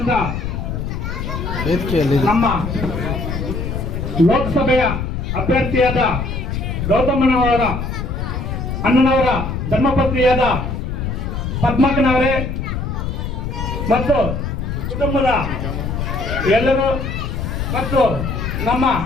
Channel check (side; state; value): left; noise; rumble, 3 dB below the sound